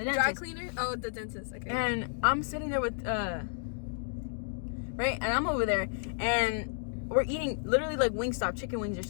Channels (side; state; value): right; silent; digital silence